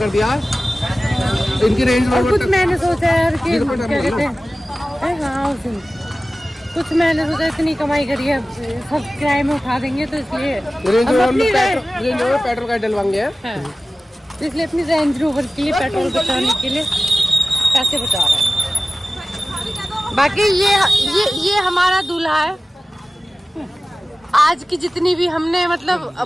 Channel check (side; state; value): both; normal; correlation 0.96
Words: दिया। इनकी रेंज और कुछ मैंने सोचा यार कि क्या कहते हैं, हाँ उस दिन कुछ मैंने सोचा इतनी कमाई करी है, सब किराए में उठा देंगे, तो इसलिए पेट्रोल का डलवाएंगे, इसलिए अपनी रेंज रोवर के लिए पेट्रोल बचाने के लिए पैसे बचा रहे हैं। बाकी ये हमारा दूल्हा है। आज की जितनी भी हमने मतलब